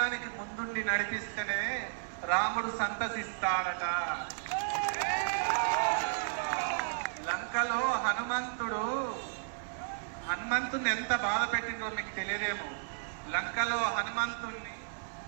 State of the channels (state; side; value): silent; left; digital silence